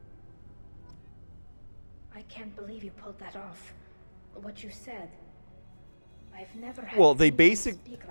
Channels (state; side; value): inverted; both; correlation -1.00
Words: I can't believe you pulled that off. What you said. I've never had Well, they anyone speak